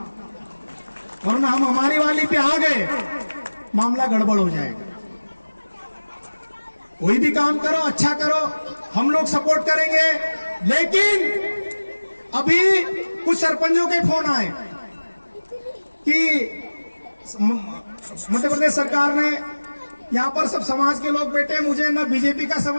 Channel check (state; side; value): inverted; both; correlation -1.00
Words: वरना हम हमारी वाली पे आ गए मामला गड़बड़ हो जाएगा। कोई भी काम करो, अच्छा करो, हम लोग सपोर्ट करेंगे। लेकिन अभी कुछ सरपंचों के फोन आए कि मध्य प्रदेश सरकार ने यहाँ पर सब समाज के लोग बैठे, मुझे ना बीजेपी का